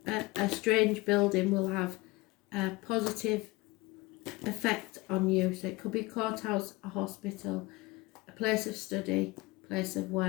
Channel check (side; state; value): right; quieter; 22.2 dB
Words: a strange building will have a positive effect on you. So it could be a courthouse, a hospital, a place of study, place of